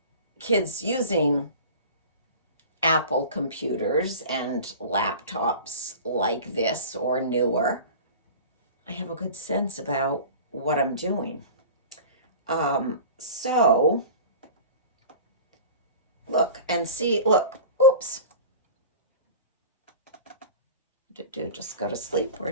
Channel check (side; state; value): both; inverted; correlation -0.38